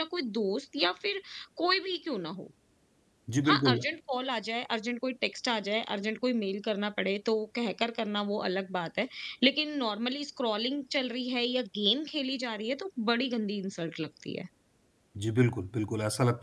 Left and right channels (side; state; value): both; identical; correlation 1.00